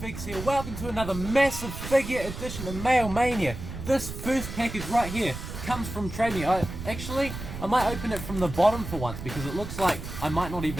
Figs here. Welcome to another massive figure edition of Mail Mania. This first package right here comes from Trade Me. I might open it from the bottom for once because it looks like I might not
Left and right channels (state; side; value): noise; right; rumble, 8 dB below the sound